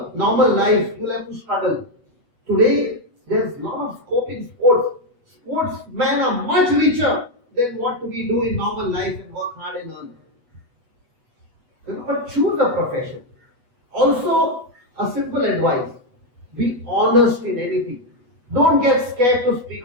normal life. You'll have to struggle. Today, there's a lot of scope in sports. Sportsmen are much richer than what we do in normal life and work hard and earn. But choose a profession. Also, a simple advice. Be honest in anything. Don't get scared to speak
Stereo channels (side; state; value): left; late; 8.1 ms